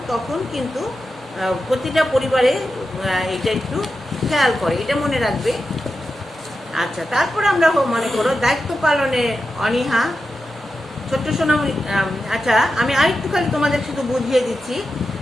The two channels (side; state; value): both; normal; correlation 0.90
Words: তখন কিন্তু প্রতিটা পরিবারে এটা একটু খেয়াল করে, এটা মনে রাখবে। আচ্ছা, তারপর আমরা মনে করো দায়িত্ব পালনে অনীহা। ছোট্ট সোনামণি, আচ্ছা আমি আরেকটু খালি তোমাদের শুধু বুঝিয়ে দিচ্ছি।